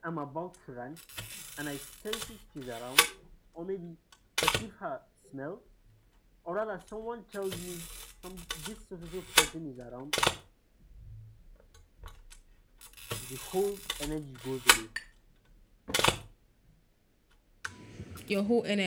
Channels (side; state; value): both; identical; correlation 1.00